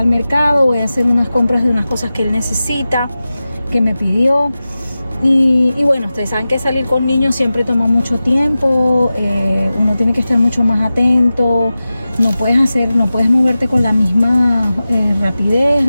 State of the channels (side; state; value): both; inverted; correlation -0.95